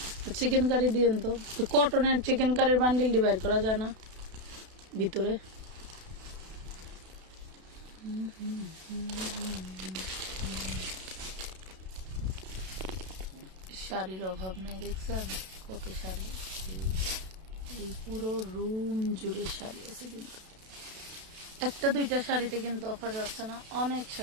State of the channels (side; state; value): left; late; 32 ms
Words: চিকেন কারি দিয়েন তো কটনের চিকেন কারির বান্ডিল ডিভাইড করা যায় না ভিতরে শাড়ির অভাব নেই দেখছেন কত শাড়ি এই পুরো রুম জুড়ে শাড়ি আছে কিন্তু একটা দুইটা শাড়িতে কিন্তু অফার যাচ্ছে না অনেক